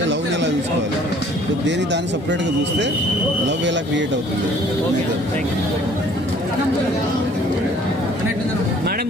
లవ్ని ఎలా చూసుకోవాలి, దేని దాన్ని సపరేట్ గా చూస్తే లవ్ ఎలా క్రియేట్ అవుతుంది. మేడం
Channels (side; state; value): both; normal; correlation 0.55